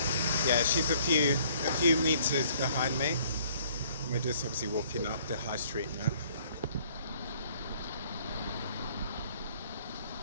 yeah, she's a few meters behind me. We're just obviously walking up the high street now.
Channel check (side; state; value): both; inverted; correlation -0.59